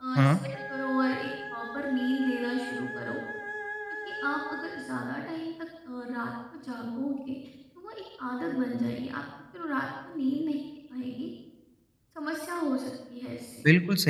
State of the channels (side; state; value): both; identical; correlation 1.00